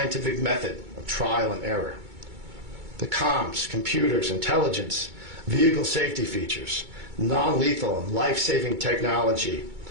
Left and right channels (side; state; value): left; late; 2.2 ms